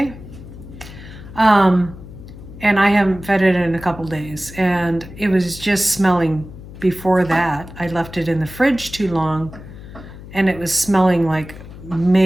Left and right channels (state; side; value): noise; left; hum, 15 dB below the sound